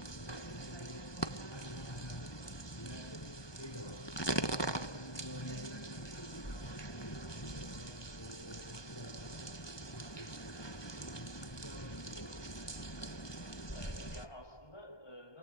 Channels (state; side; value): late; right; 1.2 ms